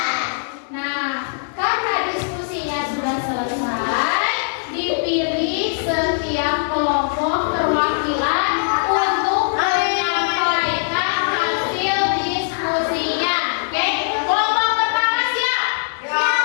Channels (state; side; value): silent; right; digital silence